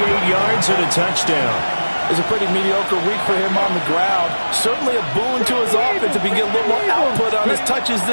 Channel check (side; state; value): both; inverted; correlation -1.00